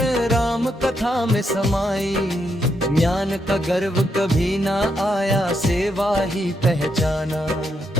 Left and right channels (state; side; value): normal; both; correlation 0.79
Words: राम कथा में समाई। ज्ञान का गर्व कभी ना आया, सेवा ही पहचाना।